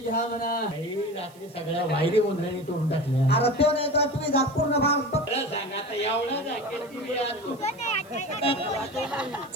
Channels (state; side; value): noise; right; hiss, 26 dB below the sound